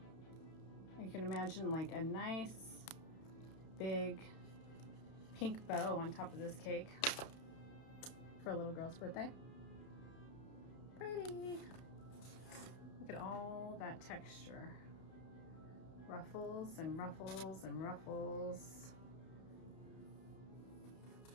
You can imagine like a nice big pink bow on top of this cake for a little girl's birthday. Pretty. Look at all that texture. Ruffles and ruffles and ruffles.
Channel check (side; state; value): right; late; 31 ms